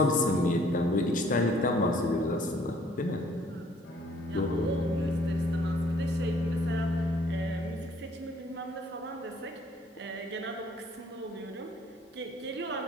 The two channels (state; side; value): normal; both; correlation 0.60